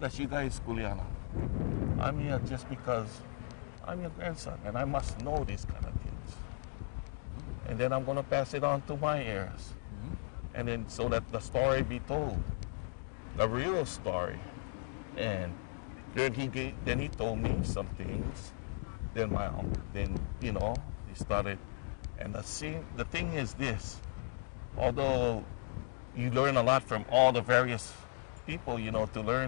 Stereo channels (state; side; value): silent; right; 54 dB below the other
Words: you guys, Kuliana. I'm here just because I'm your grandson and I must know these kind of things. And then I'm going to pass it on to my heirs. Mm-hmm. And then so that the story be told, the real story. And then he told me some things. Then he started. And the thing is this, although you learn a lot from all the various people, to